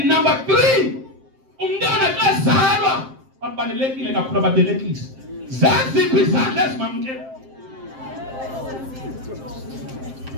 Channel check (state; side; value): late; left; 7.6 ms